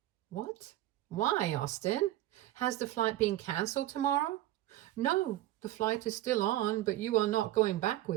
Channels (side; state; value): left; quieter; 14.9 dB